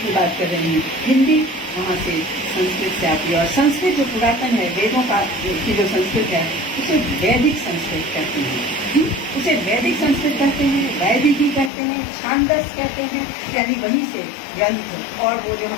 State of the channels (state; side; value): drops out; right; at 11.7 s